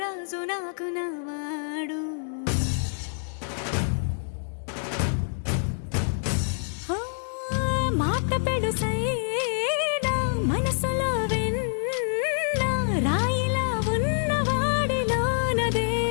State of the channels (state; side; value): silent; right; digital silence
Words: నాకు నవాడు. మాట పెడుసైనా మనసులో వెన్న రాయిలా ఉన్నవాడిలోన